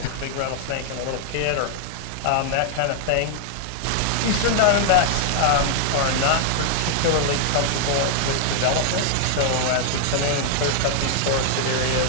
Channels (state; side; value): different; both; correlation -0.01